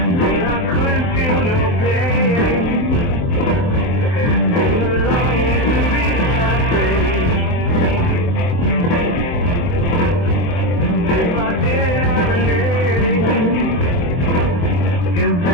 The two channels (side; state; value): right; late; 23 ms